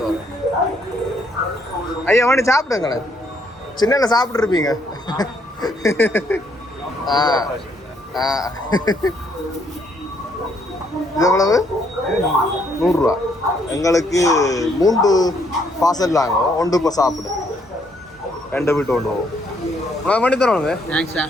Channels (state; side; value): normal; both; correlation 0.70